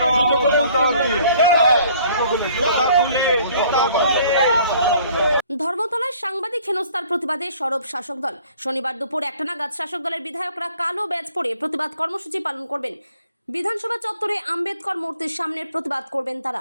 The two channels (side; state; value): both; inverted; correlation -0.57